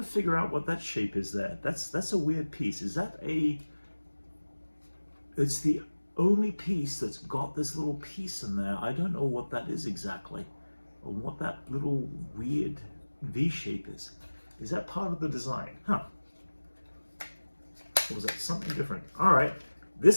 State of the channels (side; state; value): both; inverted; correlation -1.00